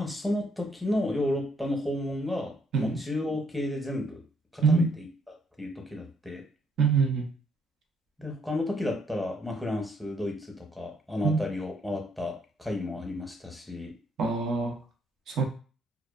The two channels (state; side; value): normal; both; correlation 0.69